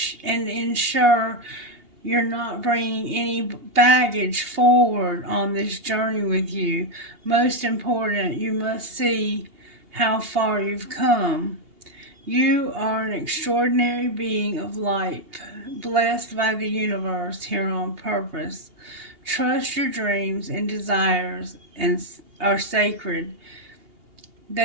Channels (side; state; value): left; late; 2.8 ms